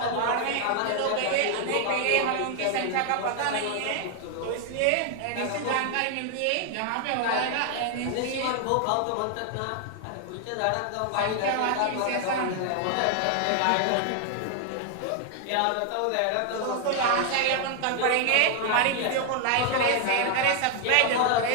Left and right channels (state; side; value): different; both; correlation 0.00